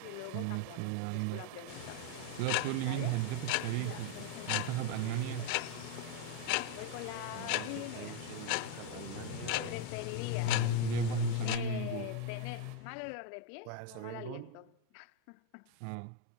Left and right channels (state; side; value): different; both; correlation 0.01